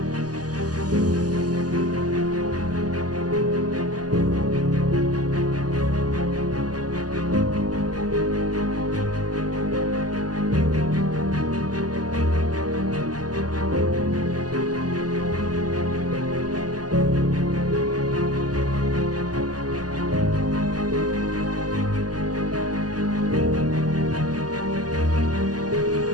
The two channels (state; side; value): late; left; 0.68 ms